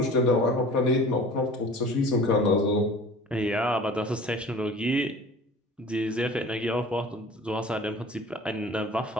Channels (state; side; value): normal; both; correlation 0.43